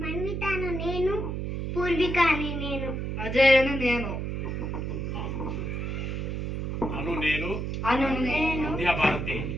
నేను, పూర్వికాని నేను, అజయను నేను, అను నేను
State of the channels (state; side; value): noise; right; hum, 3 dB below the sound